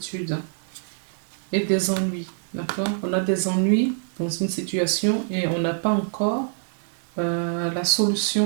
et des ennuis. D'accord. On a des ennuis dans une situation et on n'a pas encore la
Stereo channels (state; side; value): silent; left; digital silence